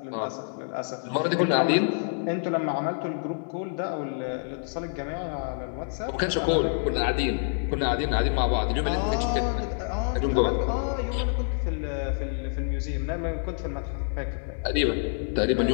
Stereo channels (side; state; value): right; silent; digital silence